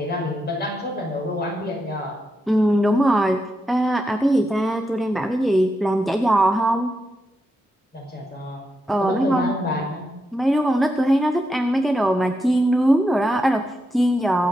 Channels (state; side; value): normal; both; correlation 0.85